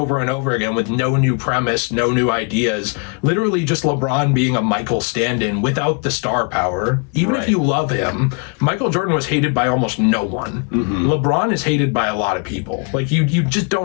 and over again with no new premise, no new ideas. Literally just LeBron being a Michael stand-in without the star power. Even if you love him, Michael Jordan was hated by almost no one. Mm-hmm. LeBron is hated by a lot of people. Like, you just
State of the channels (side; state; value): right; quieter; 37.4 dB